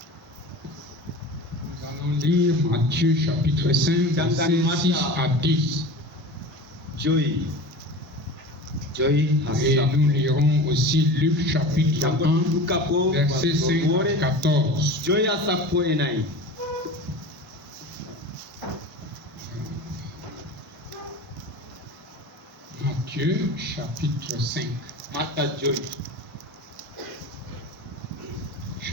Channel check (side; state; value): both; normal; correlation 0.33